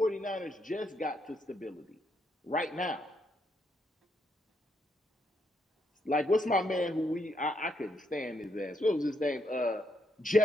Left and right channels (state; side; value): normal; both; correlation 0.77